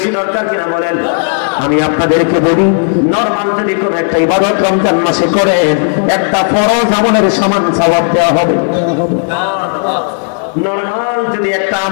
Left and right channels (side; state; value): right; silent; 58 dB below the other